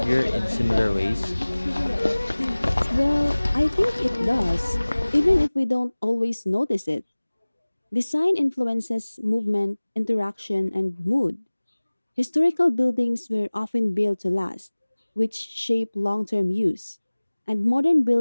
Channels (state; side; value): inverted; both; correlation -1.00